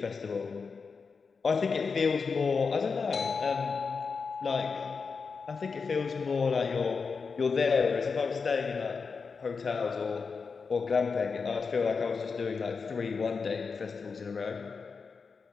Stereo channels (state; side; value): quieter; right; 5.1 dB